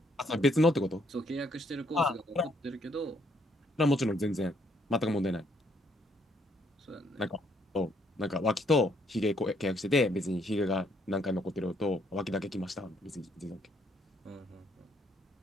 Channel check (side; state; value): both; normal; correlation 0.70